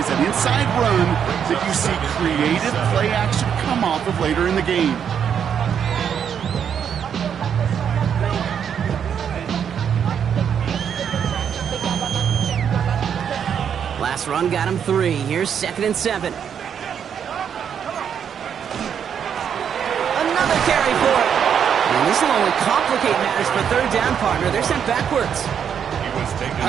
an inside run, that you see creative play action come off of later in the game. Last run got him 3. Here's 2nd and 7. Another carry for it. And this will only complicate matters for third down, partner. They're sent backwards.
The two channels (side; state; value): left; quieter; 8.0 dB